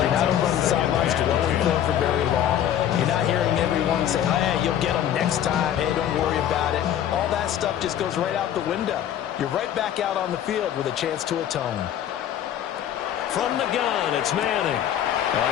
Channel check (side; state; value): right; quieter; 10.5 dB